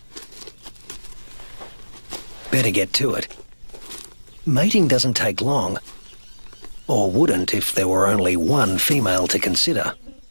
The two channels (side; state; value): both; inverted; correlation -1.00